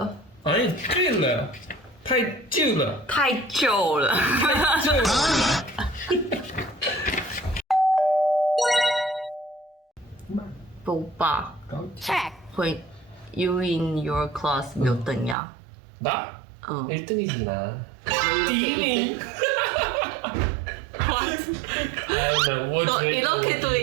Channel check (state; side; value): drops out; left; at 15.4 s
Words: 아니 醉了太旧了太旧了。旧了 오빠 check. when you in your class 몇 등이야? 나? 어. 1등이지 나. 이렇게 1등. 아나 뭐 너 이렇게도